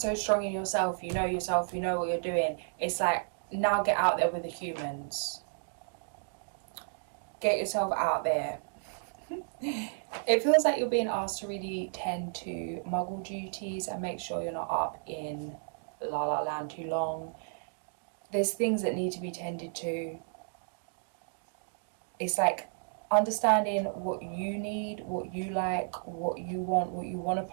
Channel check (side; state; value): left; silent; digital silence